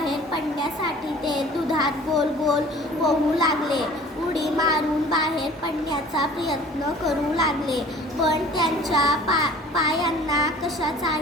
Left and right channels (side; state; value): both; normal; correlation 0.48